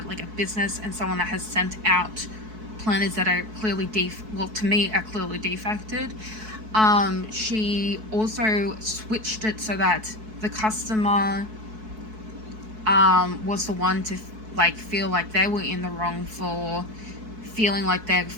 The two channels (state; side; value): late; left; 4.6 ms